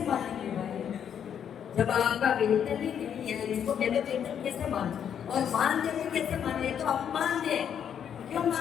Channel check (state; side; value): quieter; right; 8.6 dB